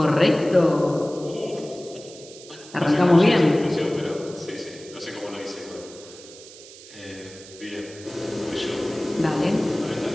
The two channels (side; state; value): right; noise; hiss, 18 dB below the sound